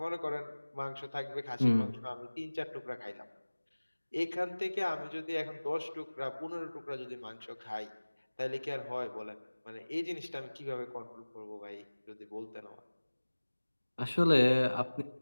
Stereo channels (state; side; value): inverted; both; correlation -1.00